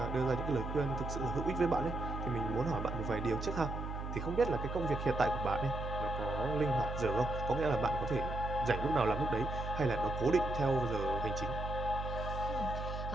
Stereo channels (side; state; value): right; noise; hum, 5 dB below the sound